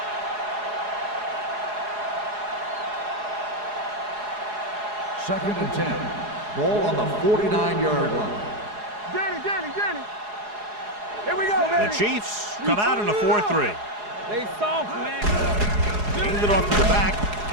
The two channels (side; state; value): left; late; 4.8 ms